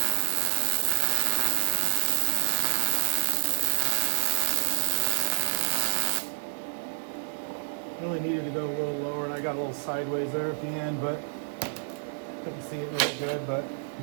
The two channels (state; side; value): silent; left; digital silence